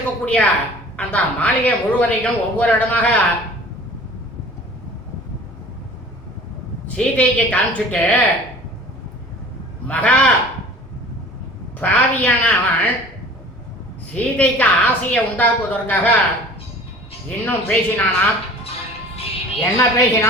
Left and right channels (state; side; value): normal; both; correlation 0.45